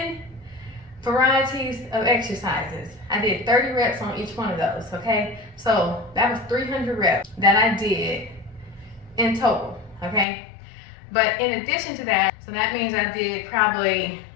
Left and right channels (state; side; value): drops out; right; at 10.2 s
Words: varieties of exercises. I did 30 reps on each one of those, okay? So that was 300 reps that I did in total, okay? But in addition to that, so that means I did probably